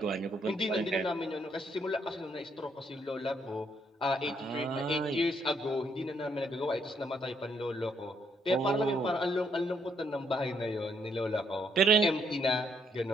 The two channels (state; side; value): normal; both; correlation 0.72